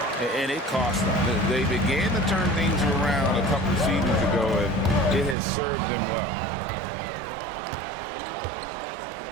and it cost them. They began to turn things around a couple seasons ago, and it has served them well.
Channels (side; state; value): left; drops out; at 5.4 s